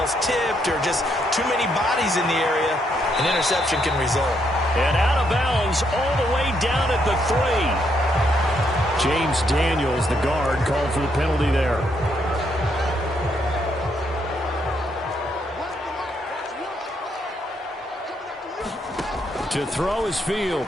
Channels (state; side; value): normal; both; correlation 0.75